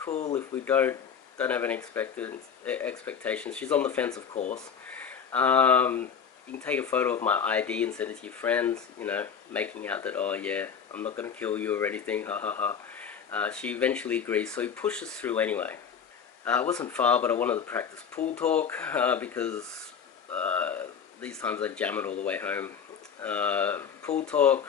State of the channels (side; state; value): right; quieter; 7.2 dB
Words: If we don't have any expectations. She's on the fence, of course. You can take a photo of my ID and send it to your friends, making out that, oh yeah, I'm not going to kill you or anything, ha ha ha. She eventually agrees, so he pushes through anyway. It wasn't far, but I wanted to practice pool talk, because these times I jam it all the way home. Pool talk,